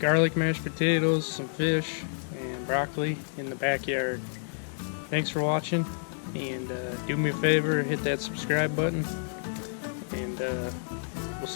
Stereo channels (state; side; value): silent; right; digital silence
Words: mashed potatoes, some fish, and broccoli in the backyard. Thanks for watching, and do me a favor, hit that subscribe button, and we'll